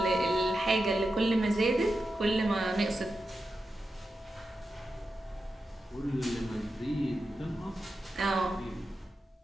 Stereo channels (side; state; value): both; normal; correlation 0.90